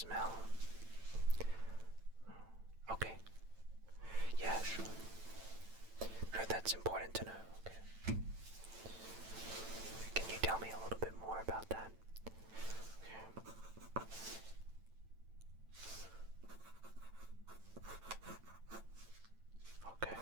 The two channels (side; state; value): left; late; 9.0 ms